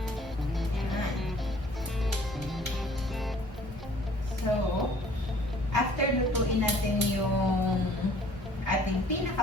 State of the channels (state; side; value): normal; both; correlation 0.55